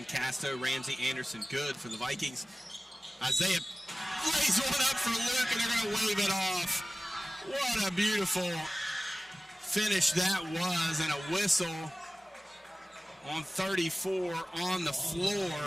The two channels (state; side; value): normal; both; correlation 0.97